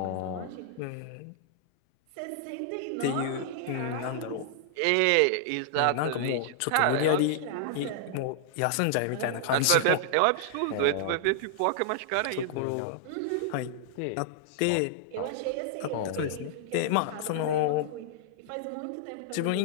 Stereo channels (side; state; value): both; different; correlation -0.01